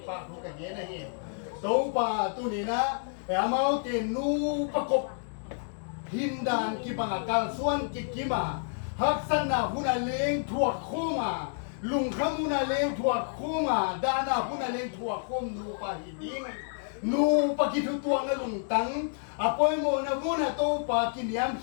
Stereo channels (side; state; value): right; silent; digital silence